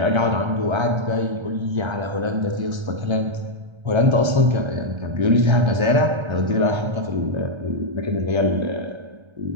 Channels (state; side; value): late; left; 1.3 ms